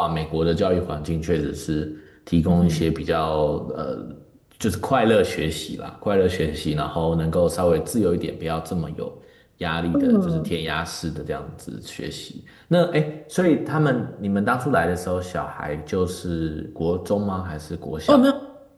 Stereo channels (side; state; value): both; identical; correlation 1.00